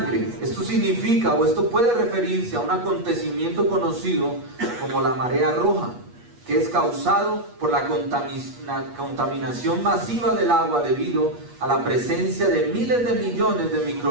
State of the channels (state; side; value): late; left; 8.4 ms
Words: Esto significa, o esto puede referirse a un acontecimiento conocido como la marea roja, que es causado por la contaminación masiva del agua debido a la presencia de miles de millones de